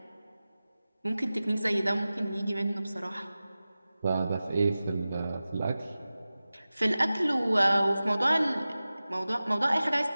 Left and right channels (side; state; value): both; inverted; correlation -0.96